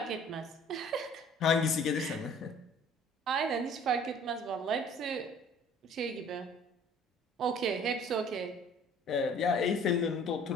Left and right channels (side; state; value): both; normal; correlation 0.52